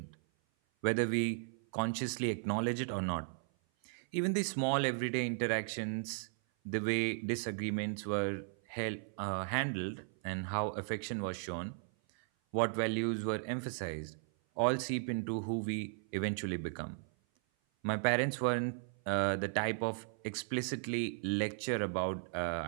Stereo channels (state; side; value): silent; left; 54 dB below the other